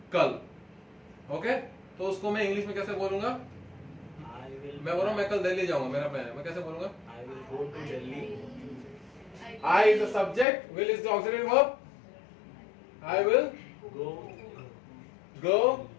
कल. ओके, तो उसको मैं इंग्लिश में कैसे बोलूंगा? मैं बोल रहा हूँ मैं कल दिल्ली जाऊंगा, मेरा प्लान है, मैं कैसे बोलूंगा? I will go to Delhi. I is the subject, will is the auxiliary verb. I will go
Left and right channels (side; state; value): right; drops out; at 10.5 s